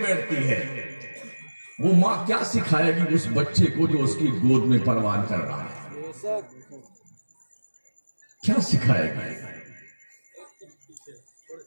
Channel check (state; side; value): inverted; both; correlation -1.00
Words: बैठती है, वो मां क्या सिखाएगी उस बच्चे को जो उसकी गोद में परवान कर रहा है। क्या सिखाएगी।